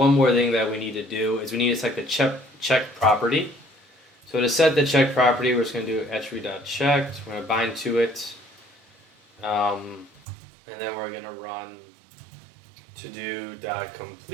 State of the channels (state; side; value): drops out; left; at 10.2 s